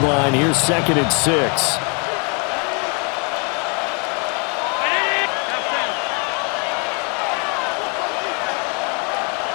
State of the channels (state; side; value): quieter; right; 36.0 dB